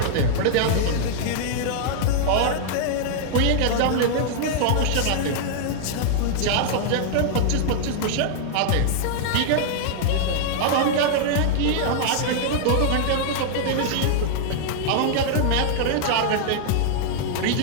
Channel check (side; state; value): both; different; correlation -0.01